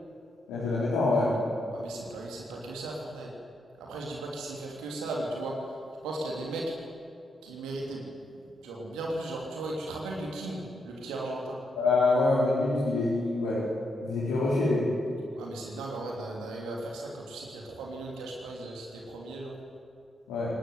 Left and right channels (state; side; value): normal; both; correlation 0.80